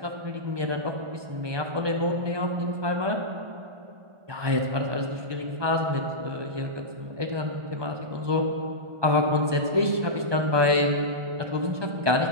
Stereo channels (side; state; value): left; late; 1.2 ms